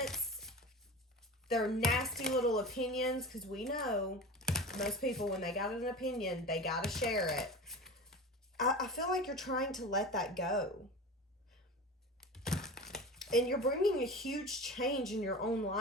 their nasty little opinions, because we know most people, when they got an opinion, they got to share it. I feel like you're trying to let that go. And you're bringing a huge change in your own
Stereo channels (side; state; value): both; normal; correlation 0.31